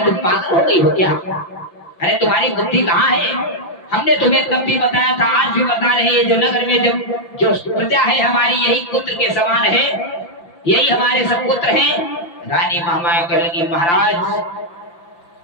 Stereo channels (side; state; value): right; late; 5.8 ms